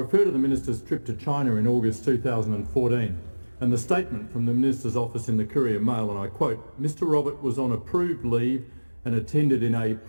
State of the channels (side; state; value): both; inverted; correlation -1.00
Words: to the Minister's trip to China in August 2014 and the statement from the Minister's office in the Courier Mail, and I quote, "Mr Robert was on approved leave and attended in a